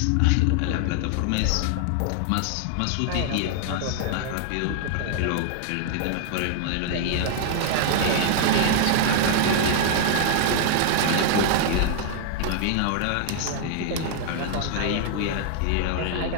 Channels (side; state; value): both; different; correlation 0.00